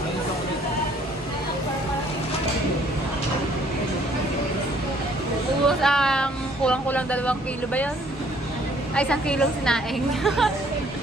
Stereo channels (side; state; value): both; normal; correlation 0.61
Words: Ubus ang kulang-kulang 2 kilo ba yun? Ay, 1 kilong sinaing.